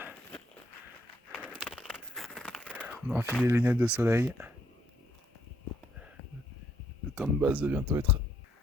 On a enfilé les lunettes de soleil. Le camp de base va bientôt être...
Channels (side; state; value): both; normal; correlation 0.70